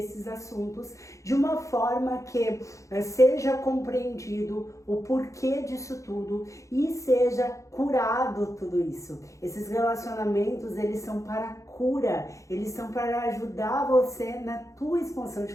assuntos de uma forma que seja compreendido o porquê disso tudo e seja curado tudo isso. Esses relacionamentos, eles são para cura, eles são para ajudar você na tua expansão de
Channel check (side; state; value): right; late; 0.15 ms